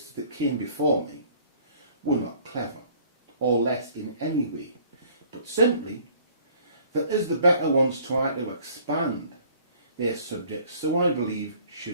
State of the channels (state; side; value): inverted; both; correlation -0.55